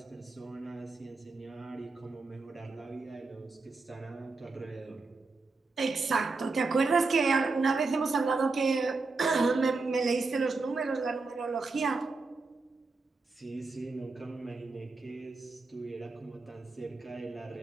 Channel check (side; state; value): left; quieter; 3.9 dB